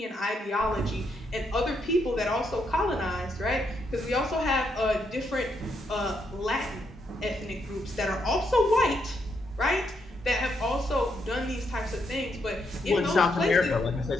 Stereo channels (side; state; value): both; normal; correlation 0.78